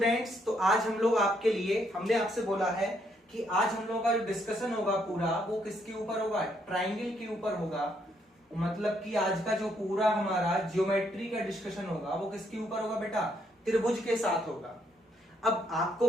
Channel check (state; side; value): normal; both; correlation 0.73